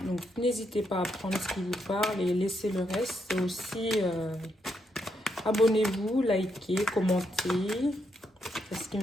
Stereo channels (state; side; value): normal; both; correlation 0.79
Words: Donc, n'hésitez pas à prendre ce qui vous parle et laissez le reste. C'est aussi... abonnez-vous, likez, commentez. C'est ce qui